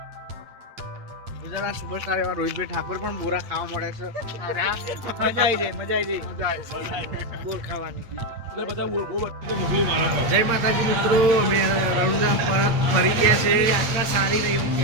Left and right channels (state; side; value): late; left; 8.7 ms